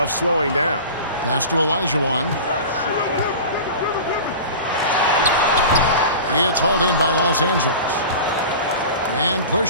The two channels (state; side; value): inverted; both; correlation -0.34